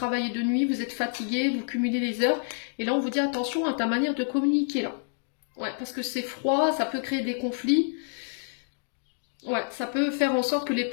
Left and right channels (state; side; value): silent; right; digital silence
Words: de nuit, vous êtes fatigué, vous cumulez les heures. Et là on vous dit attention à ta manière de communiquer là. Ouais, parce que c'est froid, ça peut créer des conflits. Ouais, ça peut faire en sorte que les